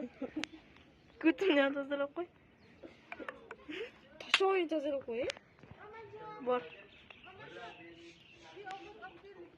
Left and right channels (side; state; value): both; identical; correlation 1.00